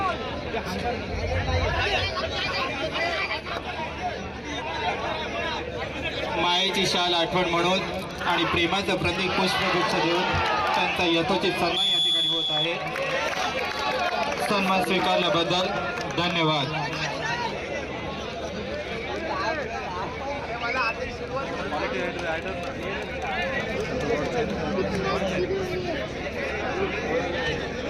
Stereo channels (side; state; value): both; identical; correlation 1.00